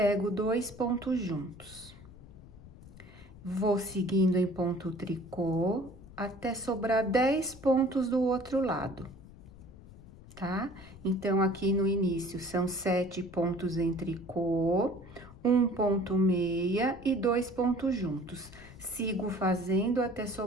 2 pontos juntos. Vou seguindo em ponto tricô até sobrar 10 pontos do outro lado, tá? Então, aqui no início são 7 pontos em tricô, 1 ponto meia e 2 pontos juntos. Sigo fazendo até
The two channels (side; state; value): left; noise; rumble, 19 dB below the sound